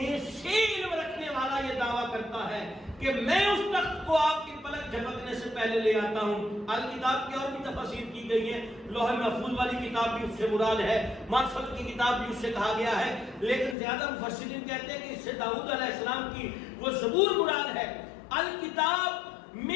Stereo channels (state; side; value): drops out; right; at 13.8 s